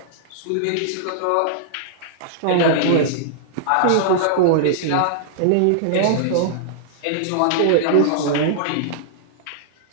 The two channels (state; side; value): different; both; correlation -0.01